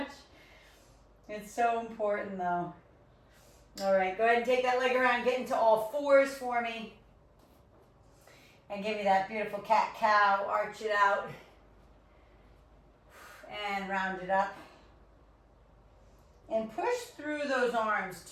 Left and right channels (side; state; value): both; identical; correlation 1.00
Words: It's so important though. All right, go ahead and take that leg around, get into all fours for me. And give me that beautiful cat-cow, arch it out. And round it up. And push through those arms